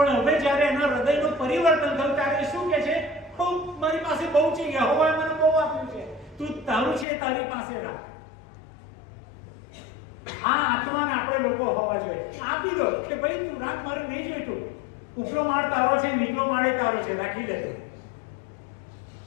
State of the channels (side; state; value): right; drops out; at 7.1 s